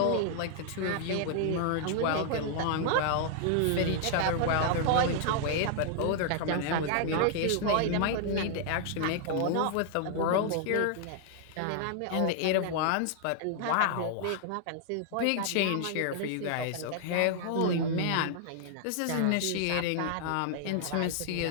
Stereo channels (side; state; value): both; different; correlation -0.01